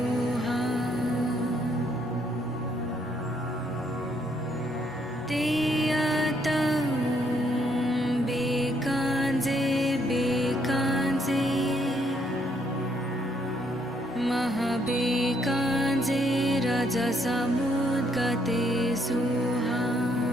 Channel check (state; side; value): normal; both; correlation 0.71